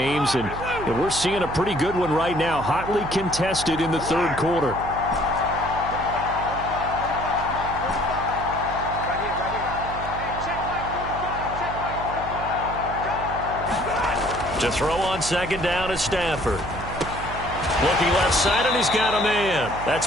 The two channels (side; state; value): right; noise; hum, 10 dB below the sound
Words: and we're seeing a pretty good one right now, hotly contested in the 3rd quarter. To throw on 2nd down is Stafford. Looking left side, and he's got a man.